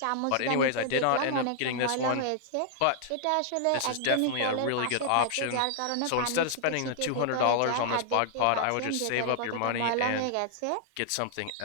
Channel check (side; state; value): both; different; correlation -0.01